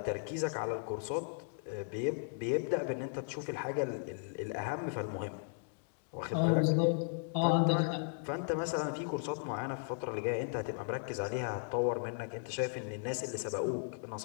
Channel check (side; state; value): right; silent; digital silence